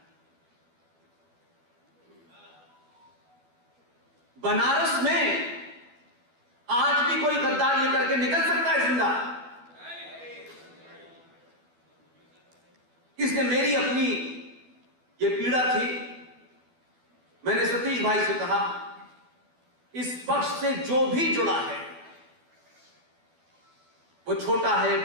बनारस में आज भी कोई गद्दार ये करके निकल सकता है जिंदा? इसने मेरी अपनी ये पीड़ा थी। मैंने सतीश भाई से कहा, इस पक्ष से जो भी जुड़ा है, वो छोटा है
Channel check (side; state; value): left; late; 12 ms